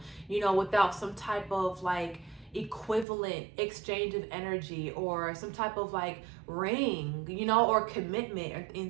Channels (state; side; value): drops out; left; at 3.1 s